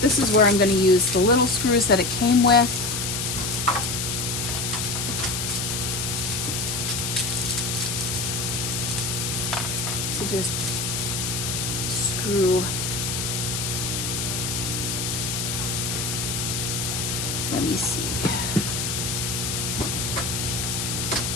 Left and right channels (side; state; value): left; noise; hiss, 1 dB below the sound